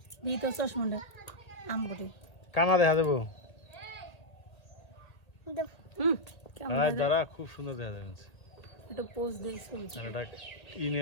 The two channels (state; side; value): late; right; 1.8 ms